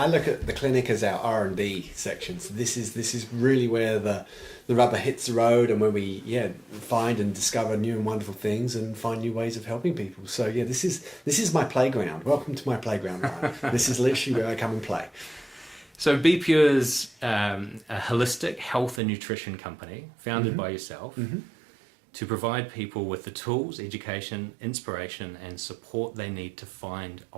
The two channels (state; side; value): drops out; left; at 19.0 s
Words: look at the clinic as our R&D section. So this is really where the rubber hits the road, and where we find and discover new and wonderful things and find new ways of helping people. So yeah, this is my playground. Welcome to my playground, Ryan. This is literally where I come and play. So Be Pure's a holistic health and nutrition company founded by yourself. To provide people with the tools, education, inspiration, and support they need to find